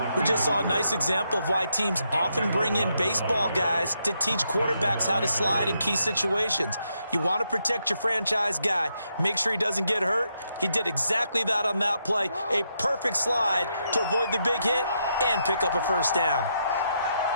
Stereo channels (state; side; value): inverted; both; correlation -0.79